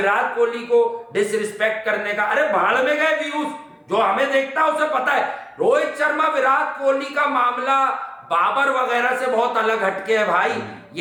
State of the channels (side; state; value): both; identical; correlation 1.00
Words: कोहली को डिसरिस्पेक्ट करने का। अरे भाड़ में गए व्यूज, जो हमें देखता है उसे पता है। रोहित शर्मा विराट कोहली का मामला बाबर वगैरह से बहुत अलग हटके है भाई।